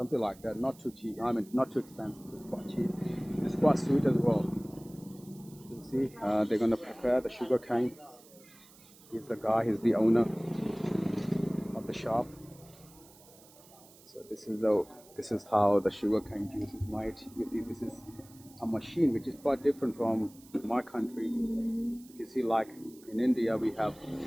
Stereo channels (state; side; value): noise; right; hiss, 24 dB below the sound